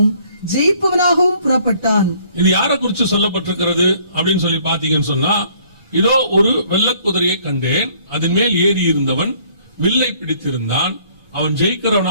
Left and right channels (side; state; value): both; inverted; correlation -0.60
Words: ஜெயிப்பவனாகவும் புறப்பட்டான். இது யாரை குறித்து சொல்லப்பட்டிருக்கிறது அப்படின்னு சொல்லி பாத்தீங்கன்னு சொன்னா, இதோ ஒரு வெள்ளை குதிரையை கண்டேன், அதன் மேல் ஏறி இருந்தவன் வில்லை பிடித்திருந்தான், அவன்